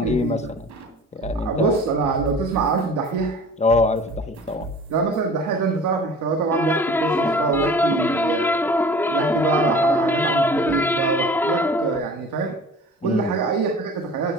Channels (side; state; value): both; normal; correlation 0.43